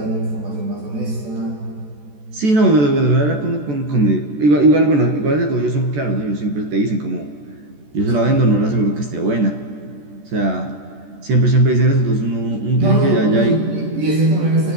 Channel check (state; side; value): late; left; 14 ms